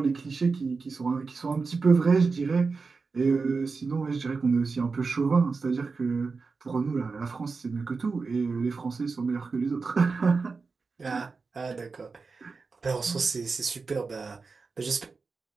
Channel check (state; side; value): quieter; left; 4.5 dB